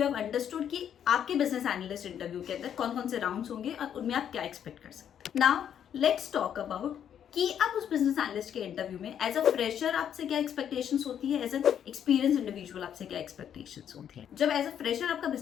have understood कि आपके बिजनेस एनालिस्ट इंटरव्यू के अंदर कौन कौन से राउंड्स होंगे और उनमें आप क्या एक्सपेक्ट कर सकते हैं। नाउ लेट्स टॉक अबाउट कि आप उस बिजनेस एनालिस्ट के इंटरव्यू में एज अ फ्रेशर आपसे क्या एक्सपेक्टेशंस होती है, एज एन एक्सपीरियंस इंडिविजुअल आपसे क्या एक्सपेक्टेशंस होती है। जब एज अ फ्रेशर आपका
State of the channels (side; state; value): right; quieter; 9.2 dB